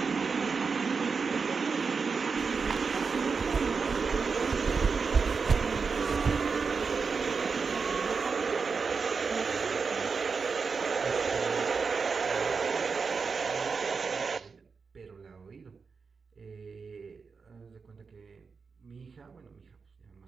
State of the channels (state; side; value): quieter; left; 5.1 dB